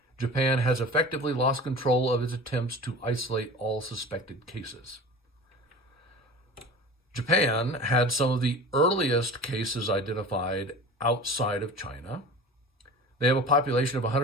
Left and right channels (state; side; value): normal; both; correlation 0.37